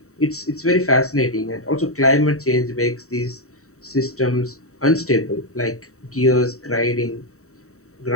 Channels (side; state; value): right; late; 0.64 ms